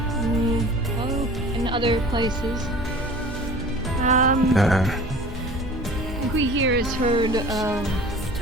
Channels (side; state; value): both; normal; correlation 0.43